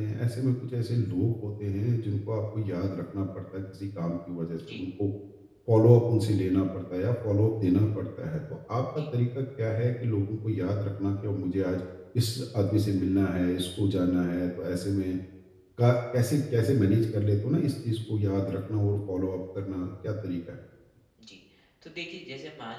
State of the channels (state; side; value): identical; both; correlation 1.00